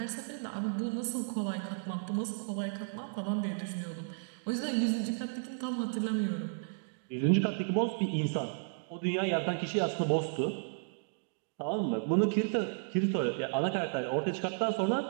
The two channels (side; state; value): left; silent; digital silence